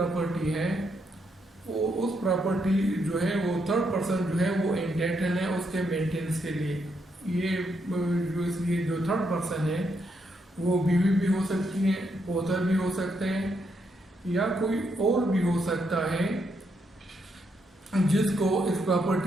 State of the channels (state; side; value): normal; both; correlation 0.78